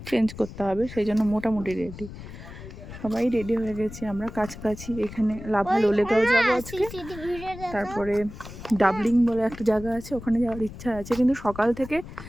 চেঞ্জ করতে হবে, সেই জন্য মোটামুটি রেডি। সবাই রেডি হয়ে গেছি আমরা। কাছাকাছি এখানে লাভা লোলেগাঁও যাবো আজকে। তারপরে ডাবলিং বলে একটা জায়গা আছে, ওখানে যাওয়ার ইচ্ছা আছে, কিন্তু সকাল থেকে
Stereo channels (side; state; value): left; noise; rumble, 13 dB below the sound